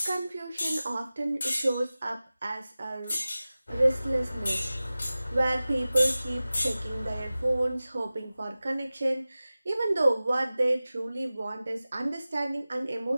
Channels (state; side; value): inverted; both; correlation -0.97